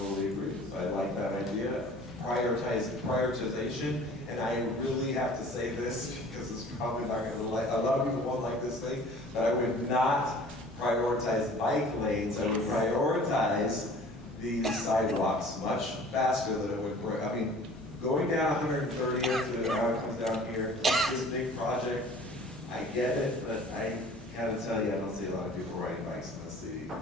agree. I like that idea. Prioritization, and I really have to say this because it's probably not going to like, a lot of people won't like this thing, but I would not prioritize bike lanes. I would prioritize these sidewalks much faster than it would. I mean, going down 130th to how it comes down here, this big project, I get it, but I gotta tell you, I don't see a lot of people riding bikes in the city.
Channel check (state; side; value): normal; both; correlation 0.48